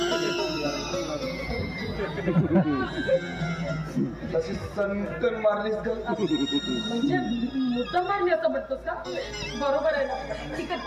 तशी सनकन मारलीस का? म्हणजे मुद्दा मारली असं म्हणतोस का? बरोबर आहे ना. ठीक आहे,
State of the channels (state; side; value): identical; both; correlation 1.00